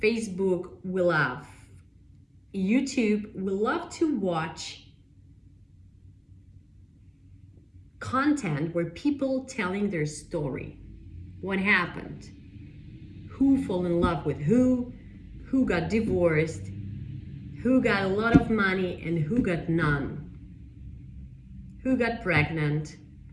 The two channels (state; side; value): identical; both; correlation 1.00